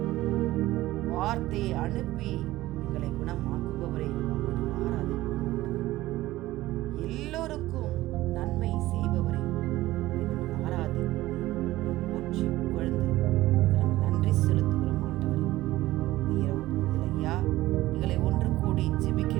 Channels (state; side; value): quieter; left; 16.8 dB